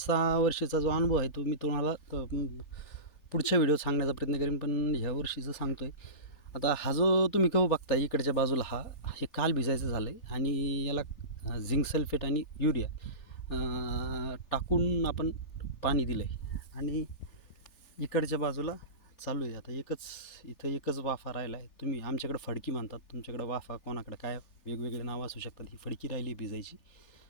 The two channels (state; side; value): late; right; 3.4 ms